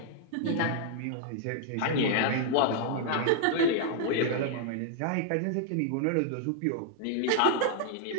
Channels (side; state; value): both; different; correlation 0.00